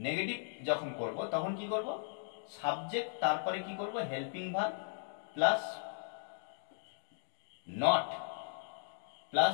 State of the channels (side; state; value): right; silent; digital silence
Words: যখন করব তখন কি করব, সাবজেক্ট তারপরে কি করব, helping verb plus not